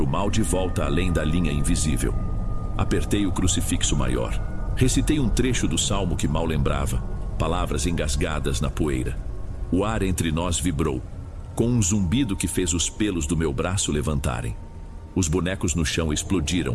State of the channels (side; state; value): both; identical; correlation 1.00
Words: o mal de volta além da linha invisível. Apertei o crucifixo maior. Recitei um trecho do salmo que mal lembrava, palavras engasgadas na poeira. O ar entre nós vibrou, com um zumbido que fez os pelos do meu braço levantarem. Os bonecos no chão explodiram,